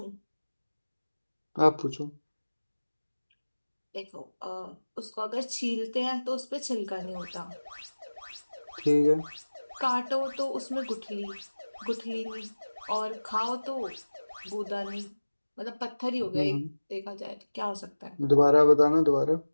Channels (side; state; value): both; inverted; correlation -1.00